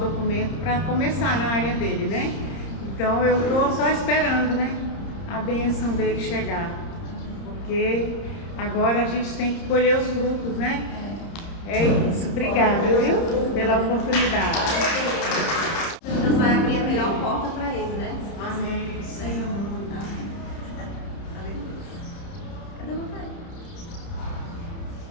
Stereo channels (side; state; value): right; late; 30 ms